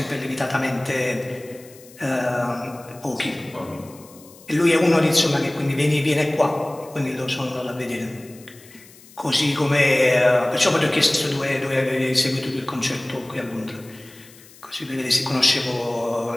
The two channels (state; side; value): noise; left; hiss, 23 dB below the sound